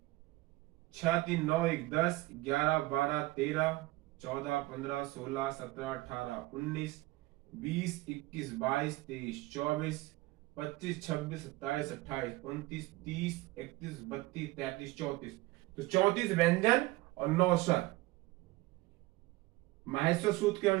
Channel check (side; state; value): left; quieter; 20.0 dB